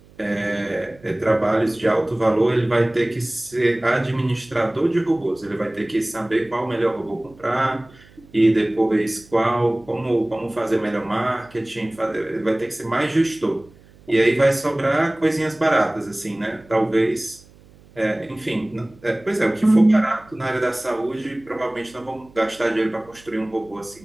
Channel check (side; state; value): right; noise; hum, 26 dB below the sound